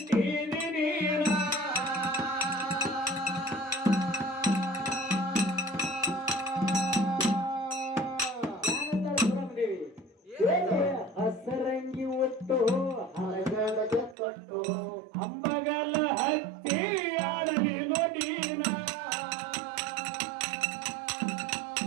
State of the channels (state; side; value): drops out; left; at 14.2 s